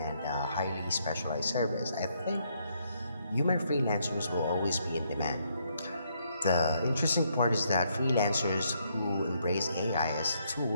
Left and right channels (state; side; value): inverted; both; correlation -0.74